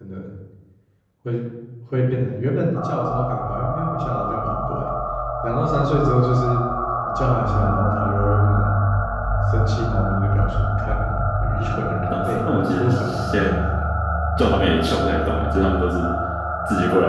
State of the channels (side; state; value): both; identical; correlation 1.00